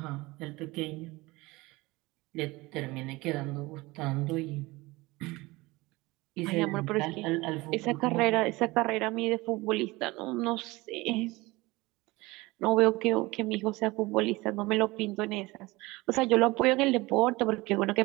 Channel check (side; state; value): left; quieter; 21.6 dB